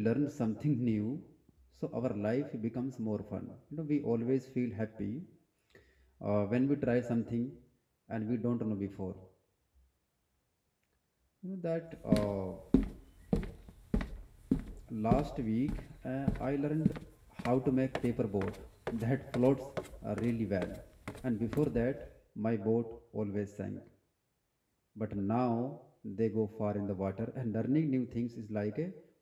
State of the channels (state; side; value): identical; both; correlation 1.00